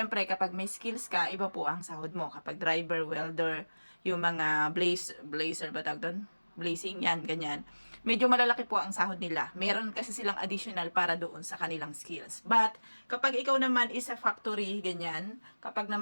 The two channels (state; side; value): inverted; both; correlation -1.00